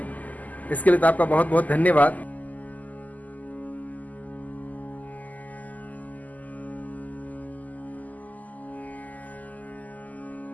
इसके लिए तो आपका बहुत बहुत धन्यवाद।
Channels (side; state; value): right; late; 0.079 ms